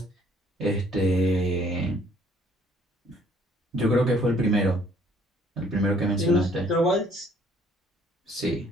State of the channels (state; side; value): normal; both; correlation 0.61